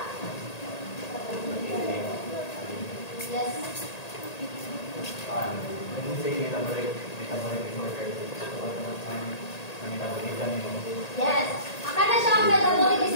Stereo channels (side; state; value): right; late; 1.8 ms